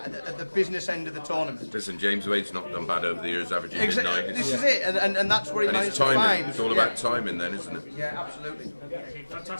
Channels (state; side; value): inverted; both; correlation -1.00